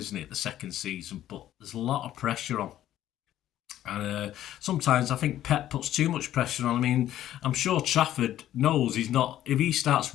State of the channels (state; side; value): quieter; right; 12.6 dB